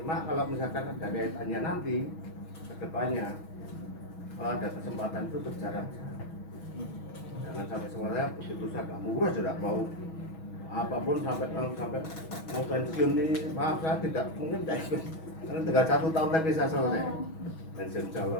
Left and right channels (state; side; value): late; right; 6.2 ms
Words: kalau misalkan ada kaitannya nanti ke depannya, kalau ada kesempatan itu berjalan. Jangan sampai semuanya begitu saya murah sudah mau apapun sampai mau pensiun ini, maaf saya tidak mungkin tidak ikut. Karena tinggal 1 tahun lagi saya selesai pensiun